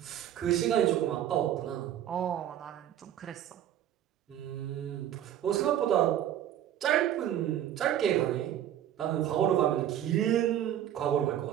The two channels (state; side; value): quieter; left; 11.2 dB